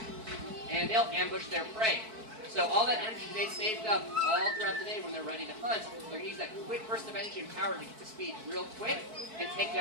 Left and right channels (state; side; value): late; left; 4.6 ms